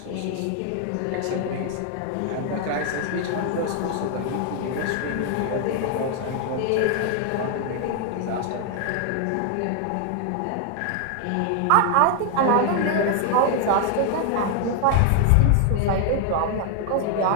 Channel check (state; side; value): different; both; correlation 0.00